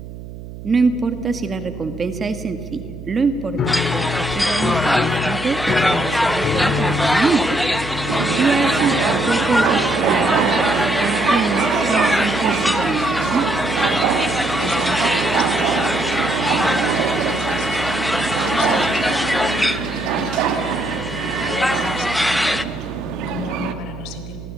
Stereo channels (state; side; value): noise; right; hum, 13 dB below the sound